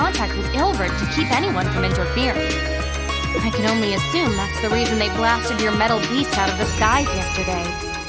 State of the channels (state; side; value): identical; both; correlation 1.00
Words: with Ilvard to keep anyone from interfering. I can only assume that's the reason they blasted your metal beast out of the skies yesterday.